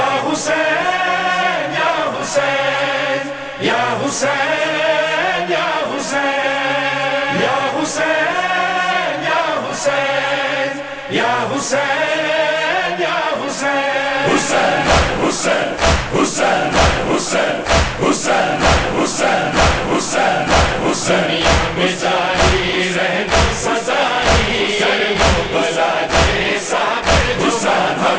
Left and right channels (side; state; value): both; identical; correlation 1.00